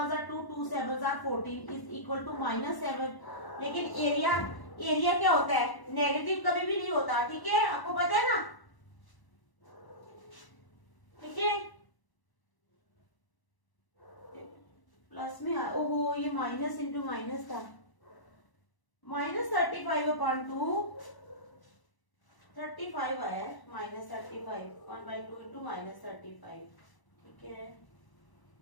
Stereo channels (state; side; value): late; right; 1.0 ms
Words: 2 2 7 14 is equal to -7। लेकिन एरिया क्या होता है, नेगेटिव कभी भी नहीं होता, ठीक है, आपको पता है ना, ठीक है, प्लस में ओहो ये माइनस इंटू माइनस था, -35/2 35 आया -35 1/2 इंटू -35, ठीक है,